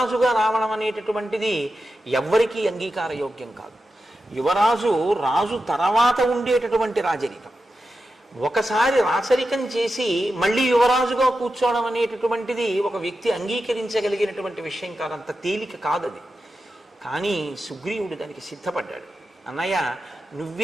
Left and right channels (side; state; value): both; normal; correlation 0.90